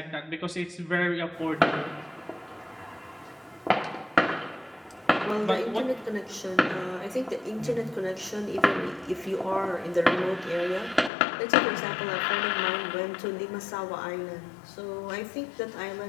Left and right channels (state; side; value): drops out; right; at 11.1 s